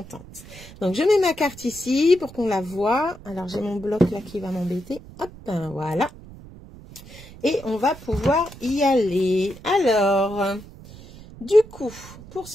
Donc je mets ma carte ici pour qu'on la voie. Alors j'ai mon bloc là qui va m'embêter. Hop, voilà. Et on va pouvoir y aller. Alors... Du coup, pour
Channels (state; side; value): noise; right; rumble, 18 dB below the sound